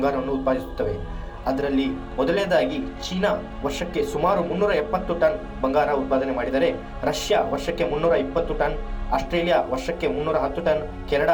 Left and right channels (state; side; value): identical; both; correlation 1.00